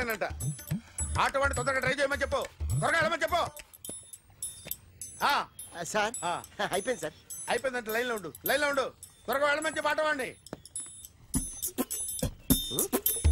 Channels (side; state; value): both; identical; correlation 1.00